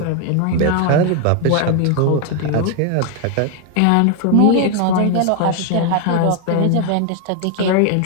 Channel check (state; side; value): different; both; correlation 0.00